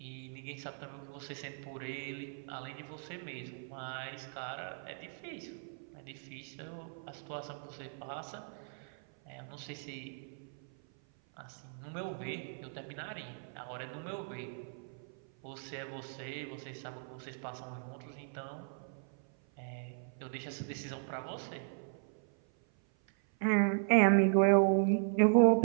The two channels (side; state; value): left; silent; 53 dB below the other